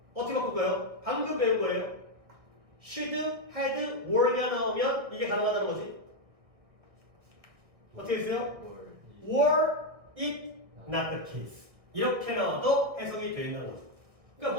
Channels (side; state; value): left; late; 1.5 ms